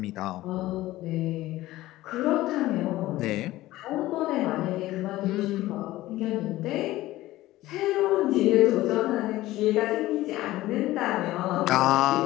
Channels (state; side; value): quieter; right; 16.6 dB